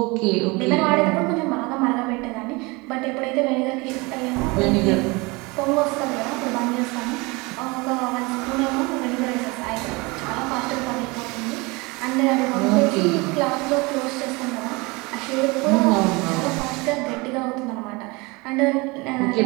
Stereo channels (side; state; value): left; quieter; 25.5 dB